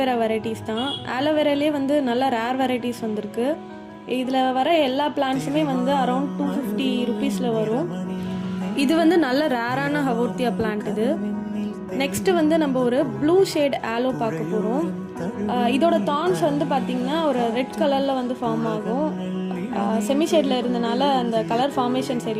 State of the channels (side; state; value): both; identical; correlation 1.00